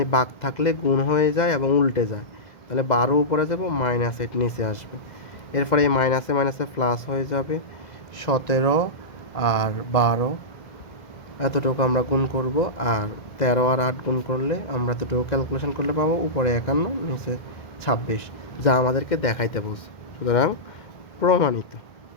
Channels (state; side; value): late; right; 1.7 ms